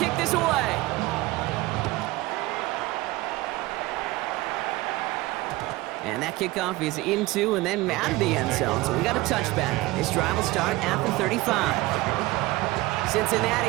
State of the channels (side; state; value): left; quieter; 19.7 dB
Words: kick this away. And that kickoff is into and then out of the end zone. So we got a touchback. This drive will start at the 35.